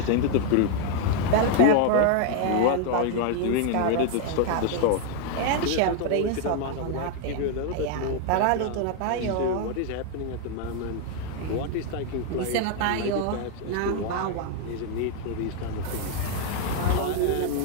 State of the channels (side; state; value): both; different; correlation 0.00